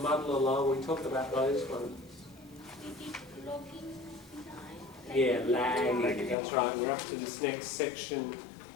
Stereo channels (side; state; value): right; drops out; at 6.4 s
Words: muddle along, we talked about those ones. Yeah, lagging, that's right. We're up to this next section